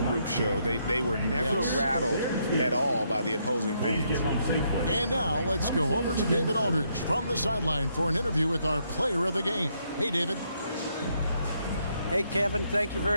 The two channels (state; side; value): inverted; both; correlation -0.75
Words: showed? They were never rattled at all by the opposing fans. And now let's go over to David Aldridge from the sideline for an interview with our player of the game. Hey, David. Hey, Kevin, thank you